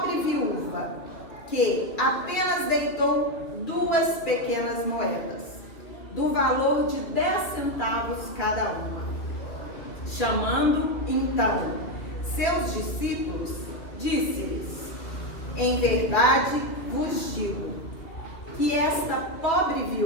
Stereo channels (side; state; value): right; late; 2.6 ms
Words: viúva que apenas deitou 2 pequenas moedas, do valor de 10 centavos cada uma. Chamando então seus discípulos, disse-lhes: em verdade vos digo que esta pobre